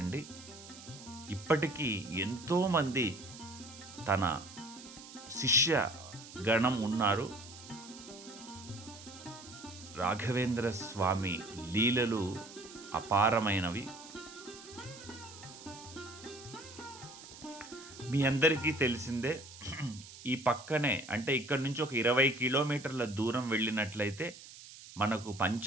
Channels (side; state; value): right; noise; hiss, 16 dB below the sound